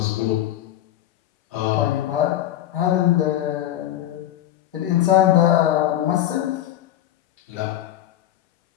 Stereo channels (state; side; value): quieter; right; 12.8 dB